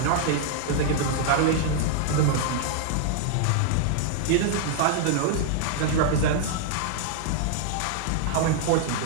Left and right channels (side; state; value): both; different; correlation -0.01